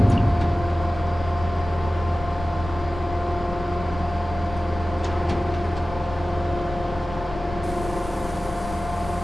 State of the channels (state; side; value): normal; both; correlation 0.96